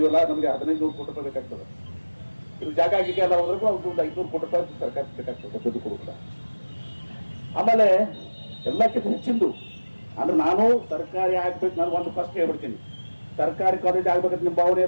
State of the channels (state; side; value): inverted; both; correlation -1.00